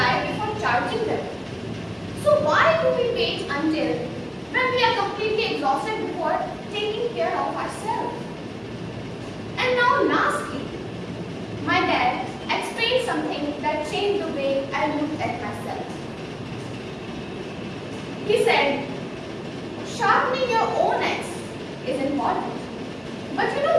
before charging them. So why do we wait until when we are completely exhausted before taking care of ourselves? And now lastly, my dad explained something that changed the way I looked at myself. He said, sharpening your own axe is important. But you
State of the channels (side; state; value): both; identical; correlation 1.00